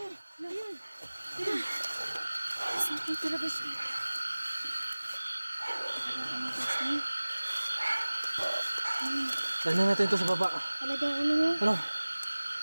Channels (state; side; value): inverted; both; correlation -1.00